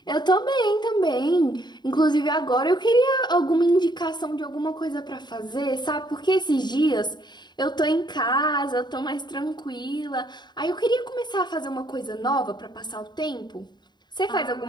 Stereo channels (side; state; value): right; late; 0.21 ms